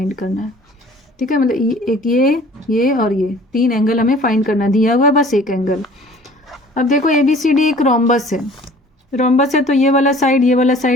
करना है। ठीक है, मतलब एक ये और ये 3 एंगल हमें फाइंड करना दिया हुआ है, बस एक एंगल। अब देखो ए बी सी डी एक रोम्बस है, तो ये वाला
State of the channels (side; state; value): both; normal; correlation 0.50